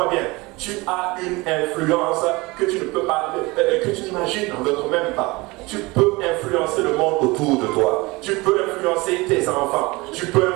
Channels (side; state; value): left; quieter; 23.4 dB